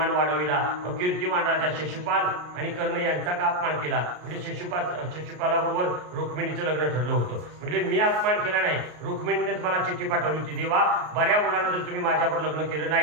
वाढविला. कीर्तिमान राजा शिशुपाल आणि कर्ण यांचा का अपमान केला? म्हणजे शिशुपालाबरोबर रुक्मिणीचं लग्न ठरलं होतं. म्हणजे मी अपमान केला नाही, रुक्मिणीनेच मला चिठ्ठी पाठवली होती, देवा बऱ्या मुलानं जर तुम्ही माझ्यावर लग्न केलं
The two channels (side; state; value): left; late; 33 ms